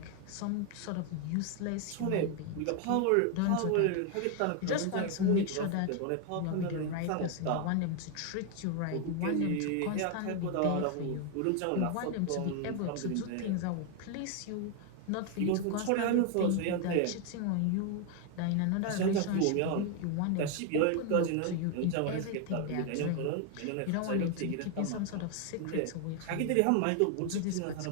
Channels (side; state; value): both; different; correlation 0.01